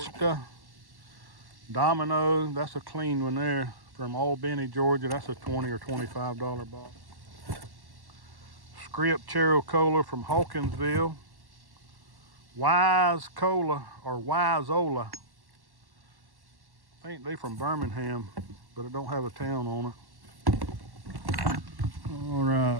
Domino, that's a clean one there from Albany, Georgia. That's a $20 or $25 bottle. Script Chero Cola from Hawkinsville. Wise Cola or Wiseola. I think they from Birmingham, but it don't have a town on it. All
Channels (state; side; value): late; left; 1.1 ms